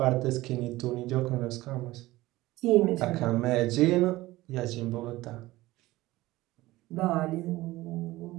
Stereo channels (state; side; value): quieter; left; 18.2 dB